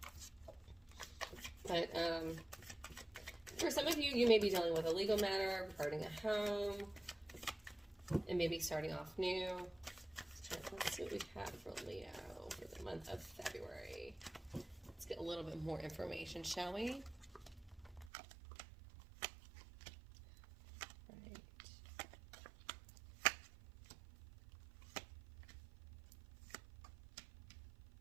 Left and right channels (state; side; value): drops out; left; at 18.1 s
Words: But for some of you, you may be dealing with a legal matter regarding a home and maybe starting off new. Let's see what we have for Leo for the month of February. Let's get a little bit more information, shall we? Right.